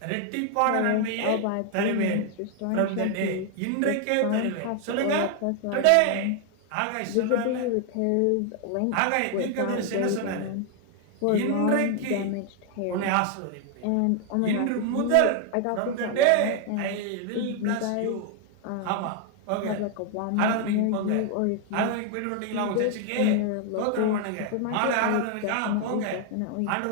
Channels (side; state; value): both; different; correlation 0.00